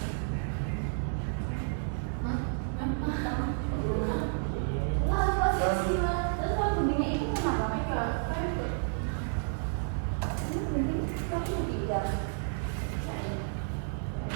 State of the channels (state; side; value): silent; left; 57 dB below the other